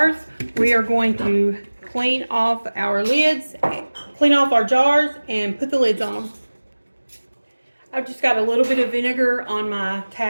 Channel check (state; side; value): inverted; both; correlation -1.00